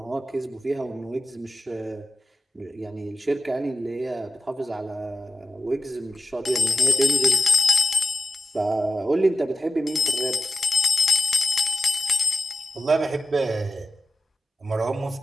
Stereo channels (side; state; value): both; normal; correlation 0.93